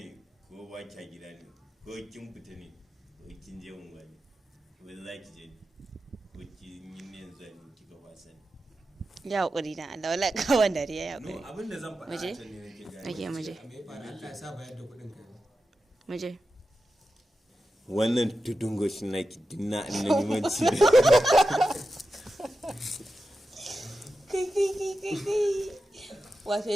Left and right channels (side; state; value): both; normal; correlation 0.91